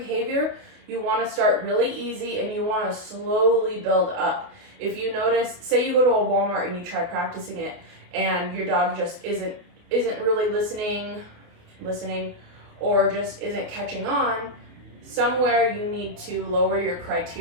you want to start really easy and you want to slowly build up. If you notice, say you go to a Walmart and you try practicing it and your dog just isn't really listening or just isn't catching on, somewhere you need to lower your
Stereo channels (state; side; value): late; left; 28 ms